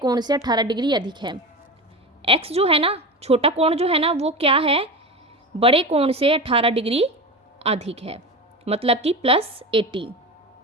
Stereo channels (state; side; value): normal; both; correlation 0.25